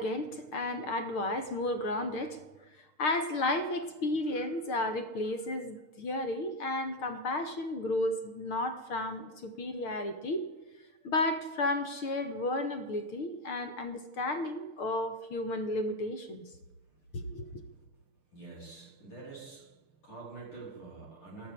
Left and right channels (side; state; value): right; late; 6.6 ms